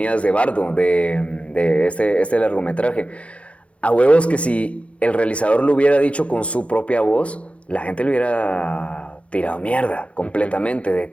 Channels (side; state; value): right; late; 0.062 ms